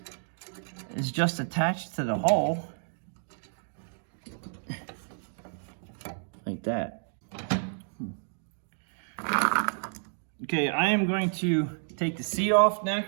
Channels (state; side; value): silent; left; 58 dB below the other